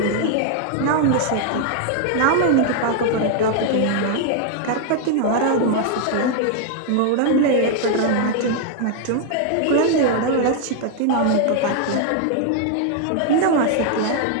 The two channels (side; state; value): both; different; correlation 0.00